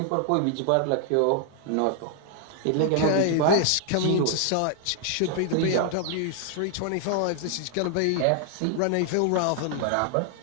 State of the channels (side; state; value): both; different; correlation 0.00